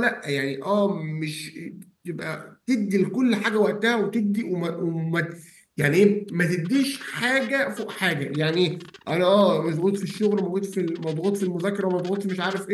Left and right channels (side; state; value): both; identical; correlation 1.00